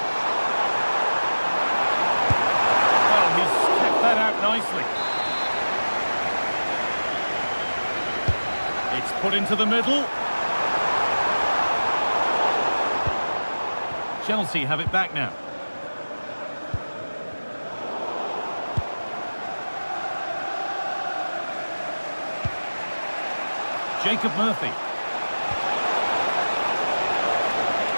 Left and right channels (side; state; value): both; inverted; correlation -1.00